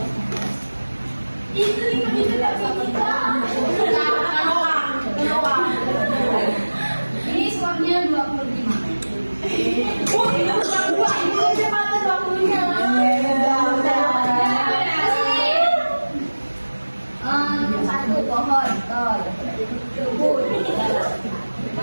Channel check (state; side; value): inverted; both; correlation -1.00